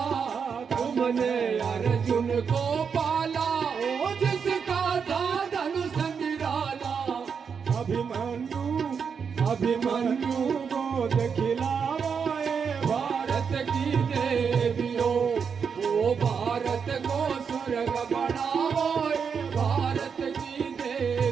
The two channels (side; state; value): left; quieter; 6.4 dB